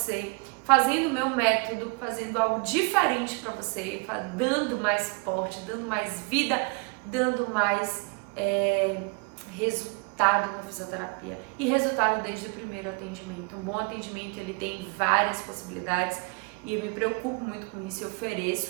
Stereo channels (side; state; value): left; quieter; 32.4 dB